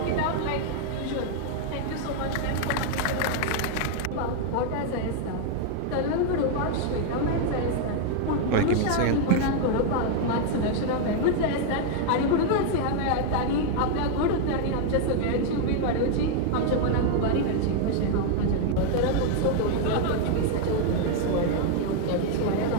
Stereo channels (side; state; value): both; different; correlation 0.00